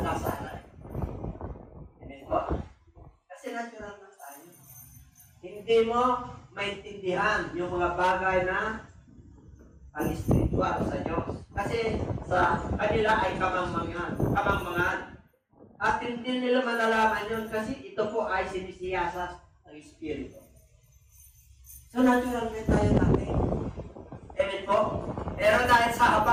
kasala. Amen po? Kasi natural na tayo. Hindi mo maintindihan yung mga bagay na pang-spiritual sa Diyos. Kasi sa kanila ay kamangmangan. At hindi nila malalaman yun kasi ito po ay sinisiyasat ng Espiritu. So natural na tayo natin. Amen po? Pero dahil sa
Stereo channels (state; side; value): identical; both; correlation 1.00